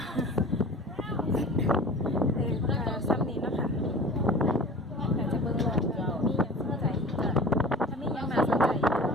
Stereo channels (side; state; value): both; normal; correlation 0.40